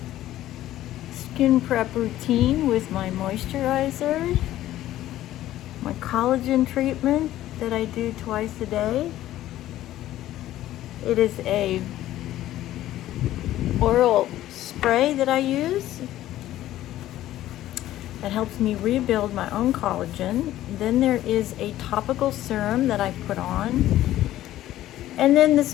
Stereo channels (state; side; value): quieter; right; 13.9 dB